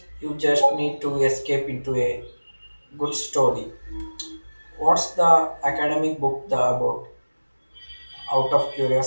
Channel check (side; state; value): both; inverted; correlation -1.00